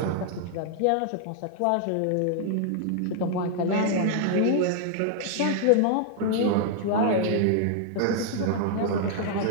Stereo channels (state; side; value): different; both; correlation 0.00